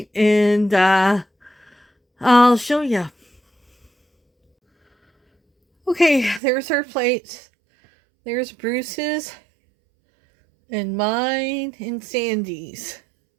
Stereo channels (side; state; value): left; drops out; at 6.4 s